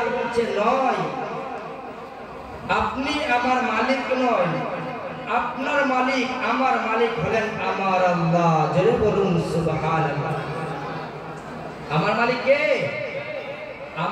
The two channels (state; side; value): identical; both; correlation 1.00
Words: বলছে নয়, আপনি আমার মালিক নয়, আপনার মালিক আমার মালিক হলেন আমার আল্লাহ। জোরে বলুন সুবহানাল্লাহ। আমার মালিক কে?